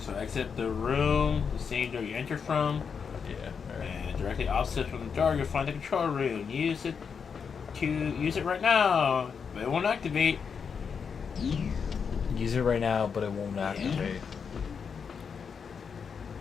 exit the room, the same door you entered from. Yeah. Alright. And directly opposite from the door, you'll find the control room. Use it right now, but it won't activate. Use it right now, but it won't activate.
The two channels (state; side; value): quieter; right; 6.3 dB